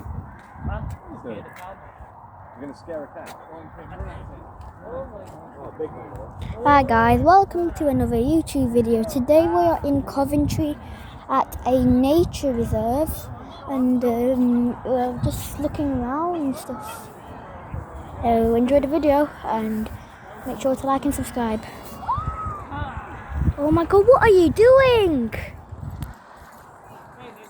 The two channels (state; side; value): identical; both; correlation 1.00